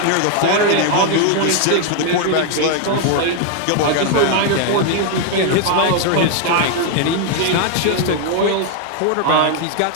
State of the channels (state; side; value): different; both; correlation 0.00